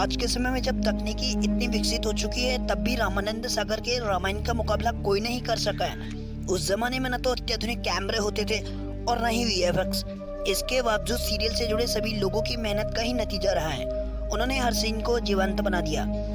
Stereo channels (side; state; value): both; identical; correlation 1.00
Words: के समय में जब तकनीकी इतनी विकसित हो चुकी है तब भी रामानंद सागर के रामायण का मुकाबला कोई नहीं कर सका है। उस जमाने में न तो अत्याधुनिक कैमरे होते थे और न ही वीएफएक्स। इसके बावजूद सीरियल से जुड़े सभी लोगों की मेहनत का ही नतीजा रहा है। उन्होंने हर सीन को जीवंत बना दिया।